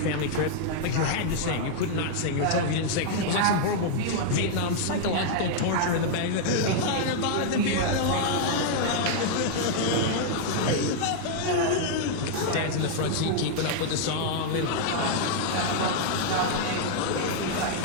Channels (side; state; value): both; different; correlation -0.01